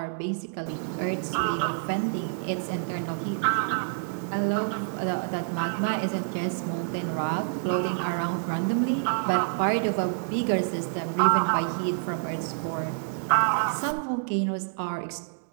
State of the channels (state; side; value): silent; left; digital silence